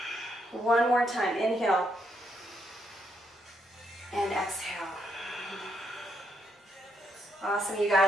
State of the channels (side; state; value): both; normal; correlation 0.77